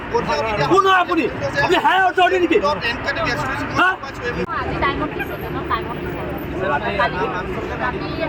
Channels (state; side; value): identical; both; correlation 1.00